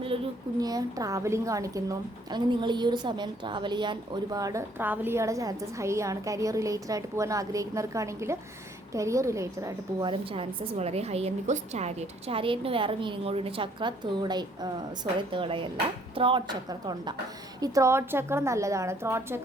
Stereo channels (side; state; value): both; normal; correlation 0.64